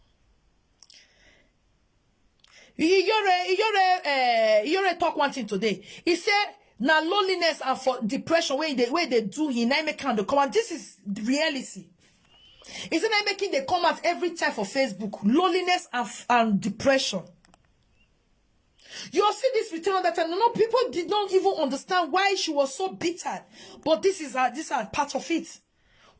You're talk one thing today. He said now loneliness and for depression where they do he now make kind of come. This is the reality. Isn't I making the comments every time for Facebook? Loneliness and depression. You see this return on that time. No, people did not even understand why she was so bitter. But this is part of it.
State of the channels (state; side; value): identical; both; correlation 1.00